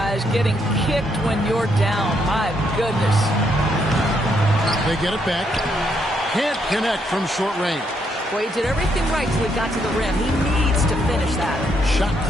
Getting kicked when you're down. My goodness. They get it back. Can't connect from short range. Well, he did everything right till he got to the rim. He needs to finish that. Shot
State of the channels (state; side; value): normal; both; correlation 0.75